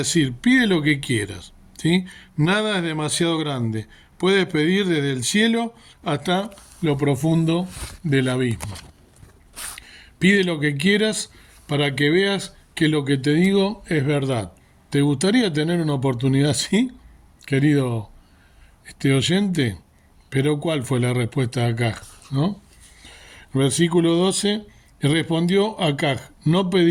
pide lo que quieras, ¿sí? Nada es demasiado grande. Puedes pedir desde el cielo hasta lo profundo del abismo. Pide lo que quieras para que veas que lo que te digo es verdad. ¿Te gustaría tener una oportunidad así, querido oyente? Pero ¿cuál fue la respuesta de Acaz, no? Versículo 12, y respondió Acaz, no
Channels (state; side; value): identical; both; correlation 1.00